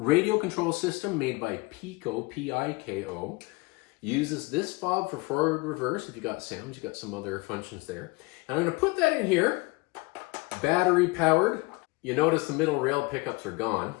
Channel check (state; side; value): quieter; right; 25.7 dB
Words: control system made by Piko, P-I-K-O. Uses this fob for forward reverse. If you got sounds, you got some other functions there. And I'm going to put that in here, battery powered. You notice the middle rail pickups are gone.